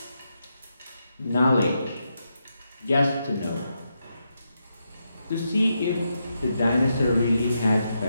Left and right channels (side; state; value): both; inverted; correlation -0.84